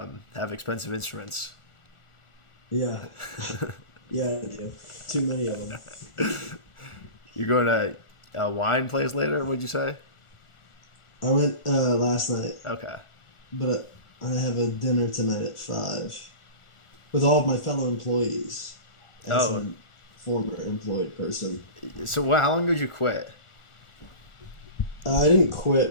have expensive instruments. Yeah. Yeah, I do. Too many of them. You're going to a wine place later? What'd you say? I went last night. Okay. But I have a dinner tonight at 5 with all of my fellow employees. As a former employed person. So how long did you quit? I didn't quit,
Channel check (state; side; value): late; right; 1.4 ms